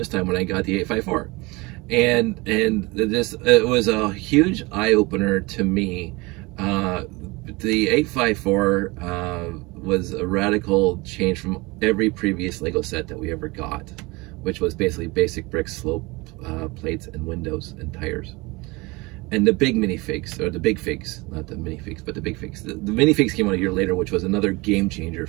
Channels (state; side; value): quieter; left; 24.3 dB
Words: time when I got the 854. And it was a huge eye-opener to me. The 854 was a radical change from every previous Lego set that we ever got, which was basically basic bricks, slope plates, and windows and tires. And the big minifigs, or the big figs, not the minifigs, but the big figs. The minifigs came out a year later, which was another game changer